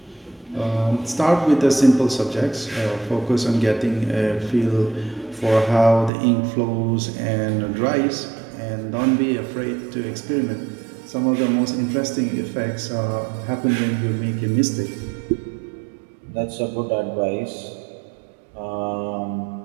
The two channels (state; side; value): drops out; left; at 6.1 s